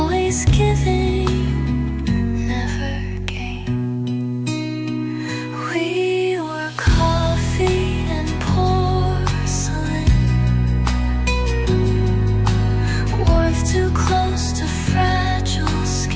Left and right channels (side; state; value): both; identical; correlation 1.00